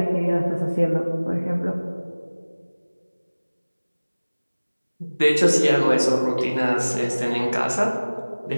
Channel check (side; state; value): both; inverted; correlation -1.00